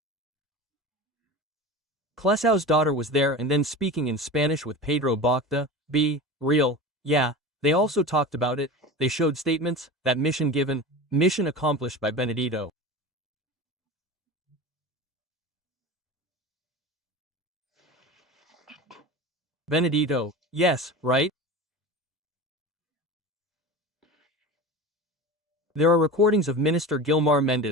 Clesau's daughter was there and then speaking in Spanish with Pedro Bocta, be real, yeah, they also talked about it, they showed statements, that mission given, mission accomplished by Benedito. Benedito, yes, right? There are recordings of Minister Gilmar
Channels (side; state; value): both; normal; correlation 0.31